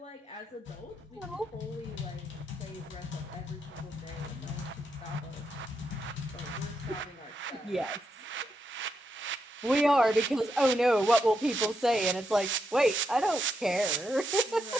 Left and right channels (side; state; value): both; normal; correlation 0.83